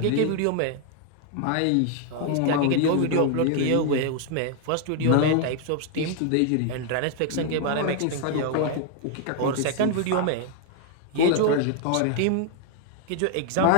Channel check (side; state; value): both; different; correlation 0.00